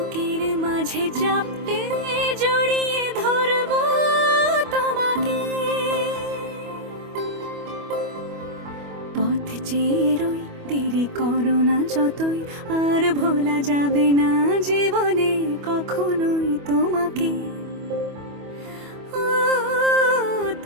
মাঝে চাপতে জড়িয়ে ধরবো তোমাকে। পথ চেয়ে রই, দেরি করো না যতই, আর ভোলা যাবে না জীবনে কখনোই তোমাকে, ও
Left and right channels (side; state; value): left; late; 25 ms